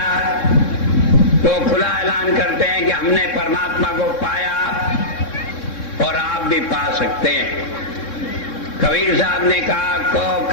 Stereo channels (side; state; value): right; late; 3.6 ms